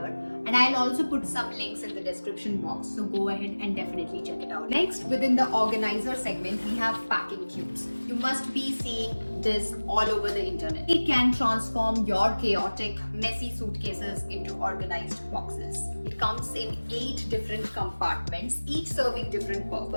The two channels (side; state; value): both; inverted; correlation -1.00